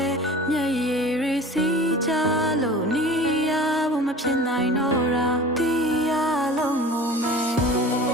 ဲမျက်ရည်တွေစီးကြလို့နေရဖို့မဖြစ်နိုင်တော့တာတီးရလုံးငုံမယ်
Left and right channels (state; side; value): normal; both; correlation 0.40